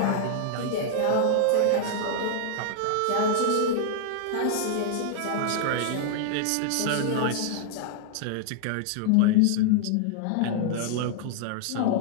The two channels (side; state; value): both; different; correlation -0.01